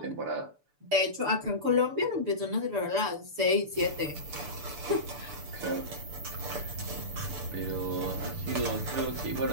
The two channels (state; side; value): late; left; 6.8 ms